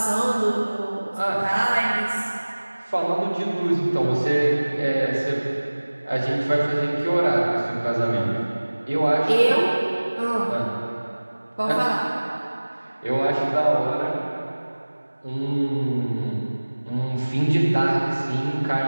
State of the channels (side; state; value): both; inverted; correlation -1.00